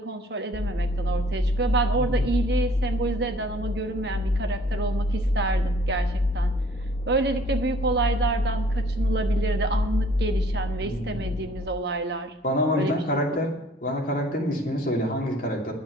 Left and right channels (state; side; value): normal; both; correlation 0.56